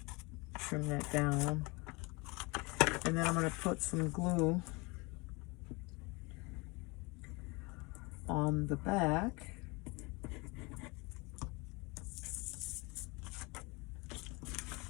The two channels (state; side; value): quieter; right; 26.8 dB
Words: trim that down. And then I'm going to put some glue on the back.